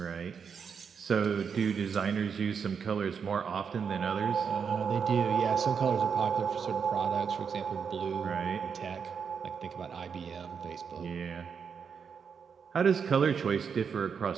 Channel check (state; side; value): quieter; left; 6.5 dB